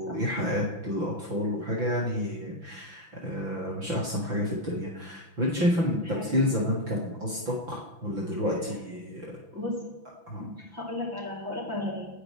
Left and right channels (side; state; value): left; late; 6.0 ms